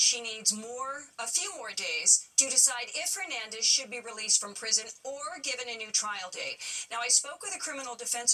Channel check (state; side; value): identical; both; correlation 1.00